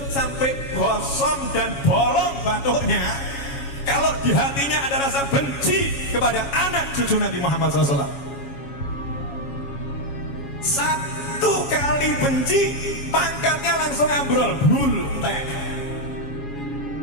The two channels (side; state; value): right; late; 7.2 ms